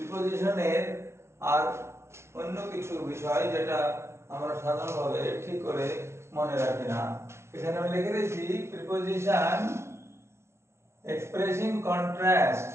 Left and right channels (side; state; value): left; late; 0.13 ms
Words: আর অন্য কিছু বিষয় যেটা আমরা সাধারণভাবে ঠিক করে মনে রাখি না। এখানে আমি লিখে দিয়েছি প্রিপোজিশন এক্সপ্রেসিং কন্ট্রাস্ট।